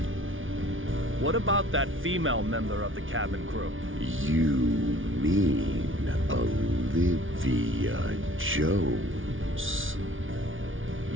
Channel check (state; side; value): late; left; 0.57 ms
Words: What about that female member of the cabin crew? You mean Olivia Jones?